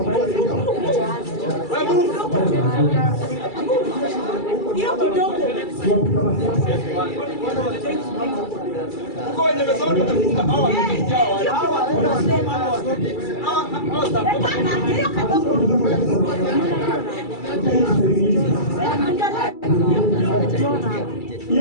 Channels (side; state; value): right; late; 2.3 ms